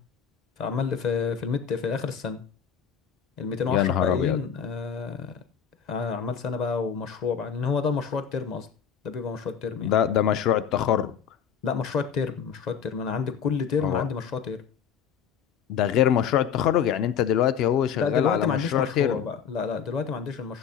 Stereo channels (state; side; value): quieter; right; 7.7 dB